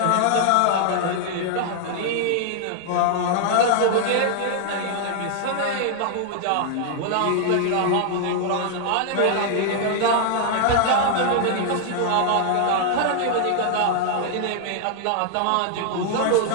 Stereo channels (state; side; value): different; both; correlation 0.00